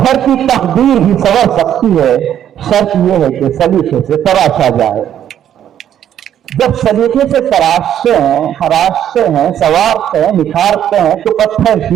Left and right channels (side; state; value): left; quieter; 10.3 dB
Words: की तकदीर भी संवर सकती है, शर्त यह है कि सलीके से तराशा जाए। जब सलीके से तराशते हैं, खराशते हैं, संवारते हैं, निखारते हैं, तो पत्थर